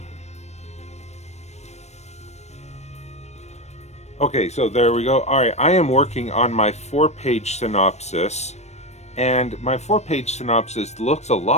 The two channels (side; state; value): right; late; 0.32 ms